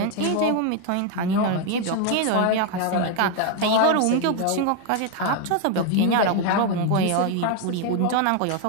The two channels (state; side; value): different; both; correlation 0.01